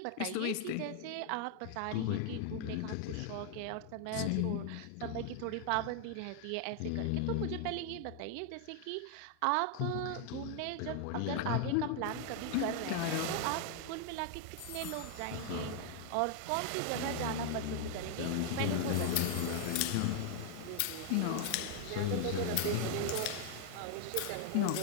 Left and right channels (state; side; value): different; both; correlation 0.00